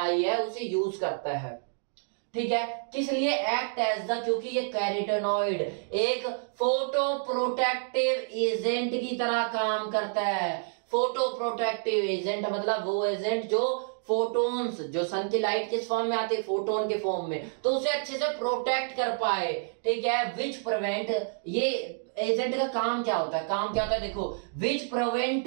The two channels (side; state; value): left; silent; digital silence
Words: है उसे यूज करता है। ठीक है, किस लिए? एक्ट एज द, क्योंकि ये कैरोटीनॉइड एक फोटो प्रोटेक्टिव एजेंट की तरह काम करता है। फोटो प्रोटेक्टिव एजेंट मतलब वो एजेंट जो फोटोन्स, जो सन की लाइट किस फॉर्म में आते हैं? फोटोन के फॉर्म में, तो उसे अच्छे से प्रोटेक्ट कर पाए। ठीक है, विच प्रिवेंट, ये एजेंट का काम क्या होता है? काम क्या होता है देखो, विच